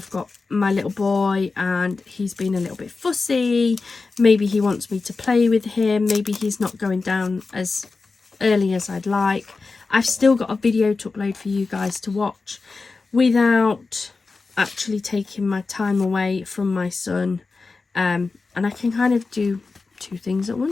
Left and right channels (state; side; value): quieter; right; 4.1 dB